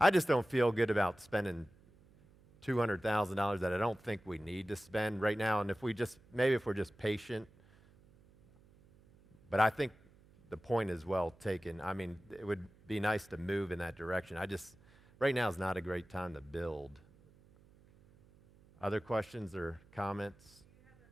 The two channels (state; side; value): noise; right; hum, 27 dB below the sound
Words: just don't feel good about spending $200,000 that I don't think we need to spend right now. And if we're just patient. But I think the point is well taken. I mean, it would be nice to move in that direction. Right now is not a great time to build. Other questions or comments? Do you have a